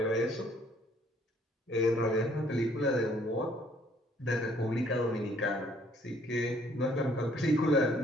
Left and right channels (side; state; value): both; normal; correlation 0.62